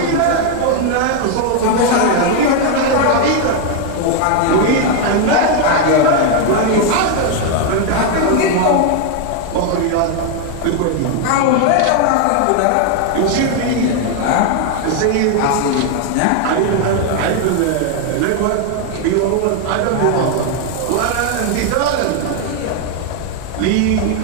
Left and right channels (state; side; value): different; both; correlation 0.01